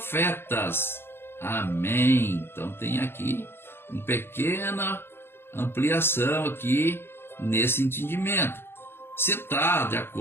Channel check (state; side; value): late; right; 0.11 ms